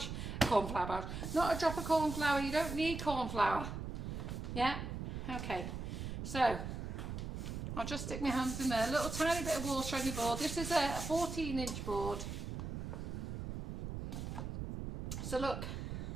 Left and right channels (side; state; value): right; noise; rumble, 5 dB below the sound